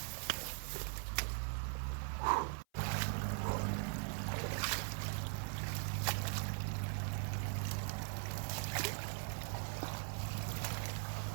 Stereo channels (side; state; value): left; silent; 50 dB below the other